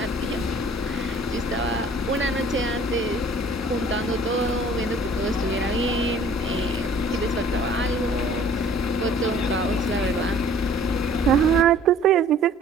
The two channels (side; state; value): both; normal; correlation 0.52